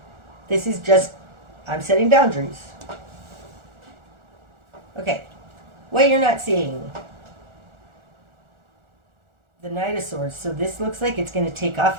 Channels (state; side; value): late; left; 1.4 ms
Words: This is just, I'm setting boundaries. Okay, what you're not seeing. The Knight of Swords. So this looks like it's going to take off